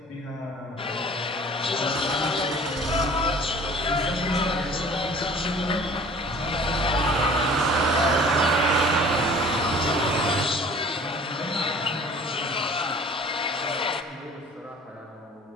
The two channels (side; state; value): both; normal; correlation 0.47